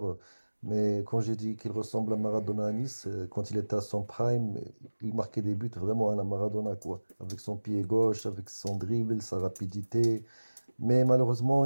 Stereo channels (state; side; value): inverted; both; correlation -1.00